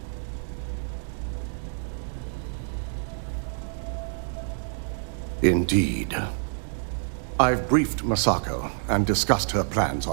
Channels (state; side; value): silent; left; 60 dB below the other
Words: Indeed. I've briefed Masako and discussed her plans